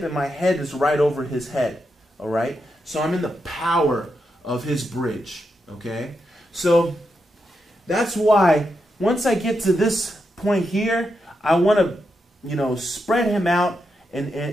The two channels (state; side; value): normal; both; correlation 0.85